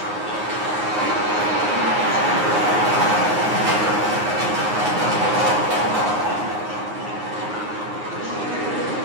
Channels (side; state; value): left; late; 9.6 ms